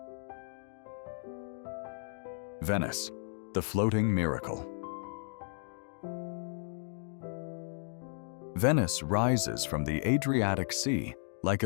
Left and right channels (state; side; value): silent; right; digital silence